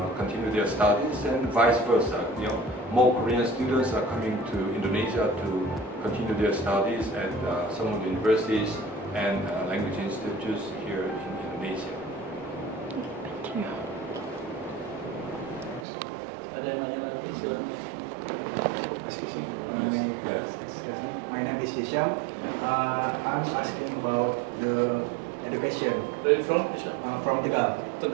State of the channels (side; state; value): left; drops out; at 15.9 s